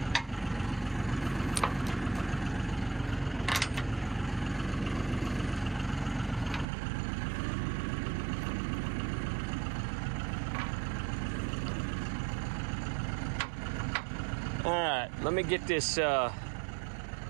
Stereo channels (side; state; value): left; drops out; at 6.7 s